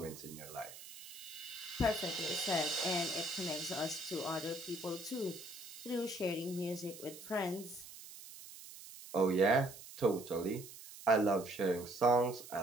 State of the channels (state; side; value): noise; right; hiss, 15 dB below the sound